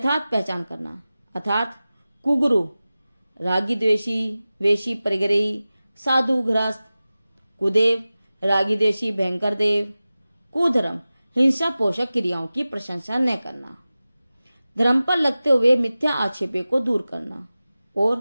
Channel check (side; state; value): both; inverted; correlation -0.96